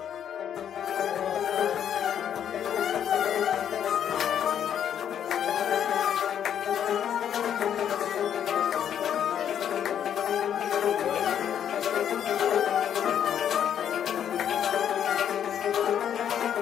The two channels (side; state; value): right; quieter; 9.3 dB